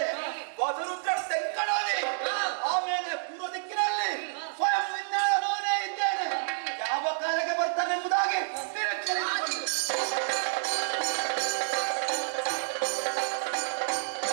ವಸುರುದ್ರ ತೆಂಕಣಲ್ಲಿ, ಆಮೇಲೆ ಪೂರ್ವ ದಿಕ್ಕಿನಲ್ಲಿ ಸ್ವಯಂ ವಿಜ್ಞಾನವೇ ಇದ್ದೇನೆ. ಯಾವ ಕಾಲಕ್ಕೆ ಬರ್ತಾನೆ ಎಂಬುದಾಗಿ ನಿರೀಕ್ಷೆ ಇಟ್ಟುಕೊಂಡು.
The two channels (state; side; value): silent; left; digital silence